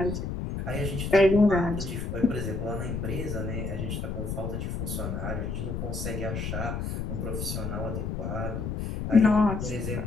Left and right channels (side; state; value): left; noise; rumble, 3 dB below the sound